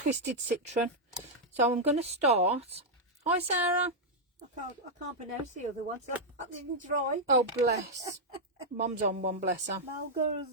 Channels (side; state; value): both; normal; correlation -0.04